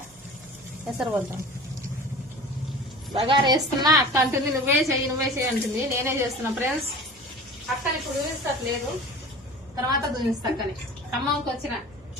ఎసరు పోతాం. బగారా వేస్తున్నా అక్క అంటుంది నువ్వే చెయ్యి అంటుంది. నేనే చేస్తున్నా ఫ్రెండ్స్. అక్కని ఇప్పుడు చూపిస్తట్లేదు, తర్వాత చూపిస్తా. అక్కని ఖమ్మంకి వచ్చిన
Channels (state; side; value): noise; right; hum, 26 dB below the sound